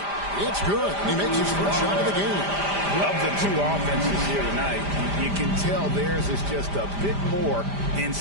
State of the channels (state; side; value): late; left; 5.0 ms